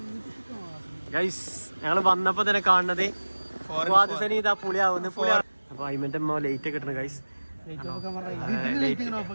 ഗൈസ്, ഞങ്ങള് വന്നപ്പോ തന്നെ കാണുന്നത് ഇതാ പുളിയാവുന്നു. അപ്പൊ അയ്മന്റെ അമ്മ ലേറ്റ് കിട്ടണ ഗൈസ്.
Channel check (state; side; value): inverted; both; correlation -1.00